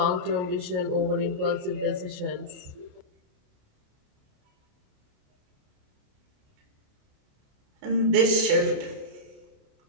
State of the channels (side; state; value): left; late; 28 ms